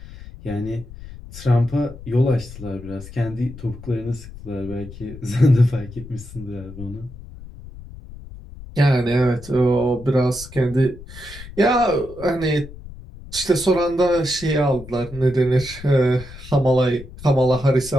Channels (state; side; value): noise; left; rumble, 15 dB below the sound